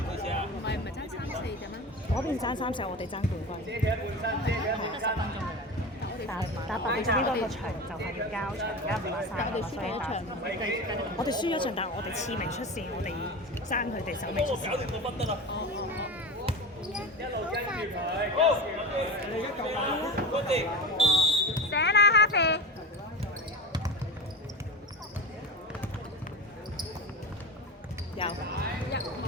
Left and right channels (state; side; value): normal; both; correlation 0.26